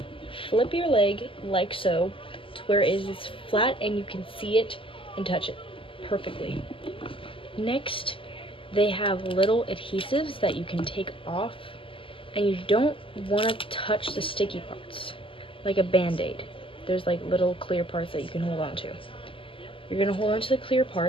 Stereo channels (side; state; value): right; late; 0.25 ms